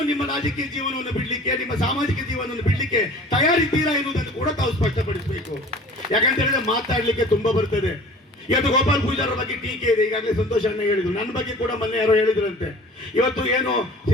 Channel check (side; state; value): both; normal; correlation 0.44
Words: ನಿಮ್ಮ ರಾಜಕೀಯ ಜೀವನವನ್ನು ಬಿಡ್ಲಿಕ್ಕೆ, ನಿಮ್ಮ ಸಾಮಾಜಿಕ ಜೀವನವನ್ನು ಬಿಡ್ಲಿಕ್ಕೆ ತಯಾರಿದ್ದೀರಾ ಎನ್ನುವುದನ್ನು ಕೂಡ ತಾವು ಸ್ಪಷ್ಟಪಡಿಸಬೇಕು. ಯಾಕಂತ ಹೇಳಿದ್ರೆ ಮಾತಾಡ್ಲಿಕ್ಕೆ ತುಂಬಾ ಬರ್ತದೆ. ಇವತ್ತು ಗೋಪಾಲ್ ಪೂಜಾರ ಬಗ್ಗೆ ಟೀಕೆ ಇದೆ. ಈಗಾಗಲೇ ಸಂತೋಷ್ ಅಣ್ಣ ಹೇಳಿದ್ರು, ನನ್ನ ಬಗ್ಗೆ ಕೂಡ ಮೊನ್ನೆ ಯಾರೋ ಹೇಳಿದ್ರಂತೆ. ಇವತ್ತು ಏನು